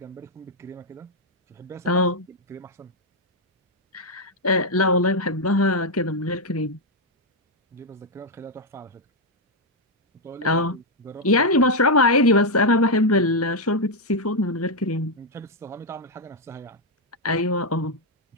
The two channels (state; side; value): normal; both; correlation 0.01